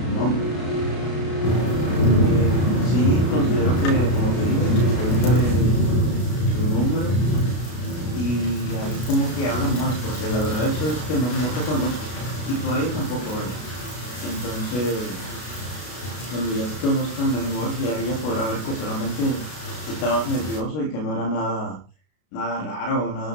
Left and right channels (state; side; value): late; right; 33 ms